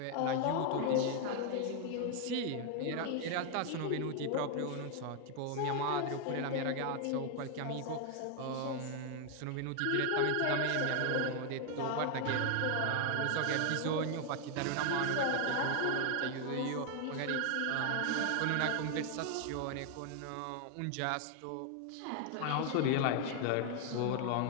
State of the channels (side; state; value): both; different; correlation 0.00